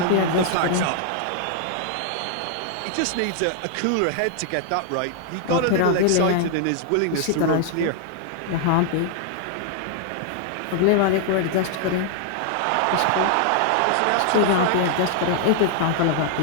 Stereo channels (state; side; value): different; both; correlation 0.00